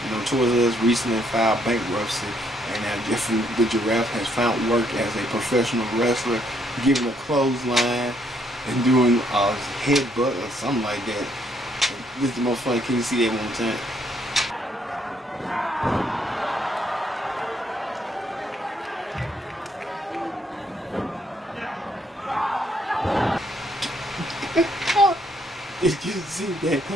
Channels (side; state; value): both; normal; correlation 0.70